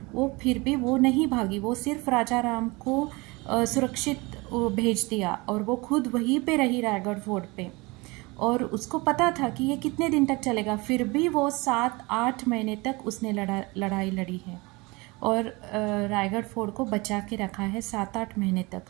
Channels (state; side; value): quieter; left; 24.8 dB